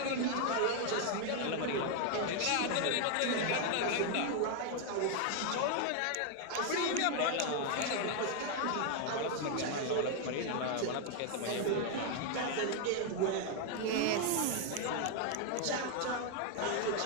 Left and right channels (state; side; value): different; both; correlation 0.00